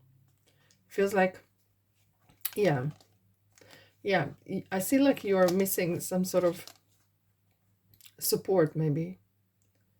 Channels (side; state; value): both; identical; correlation 1.00